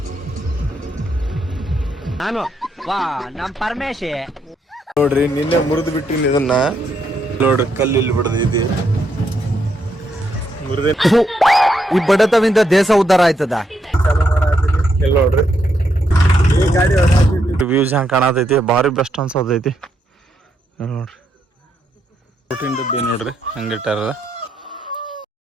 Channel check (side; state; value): both; normal; correlation 0.78